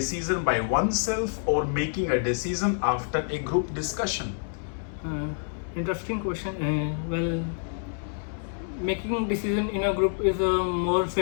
by oneself or making a decision after a group discussion? Interesting question. Well, making decision in a group is more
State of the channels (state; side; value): silent; right; digital silence